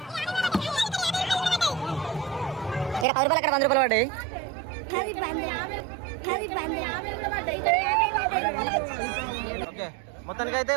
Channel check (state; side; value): drops out; left; at 3.1 s